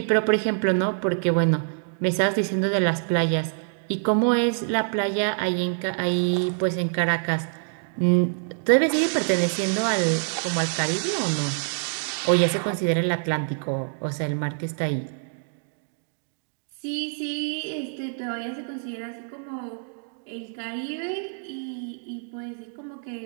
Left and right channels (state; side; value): silent; left; digital silence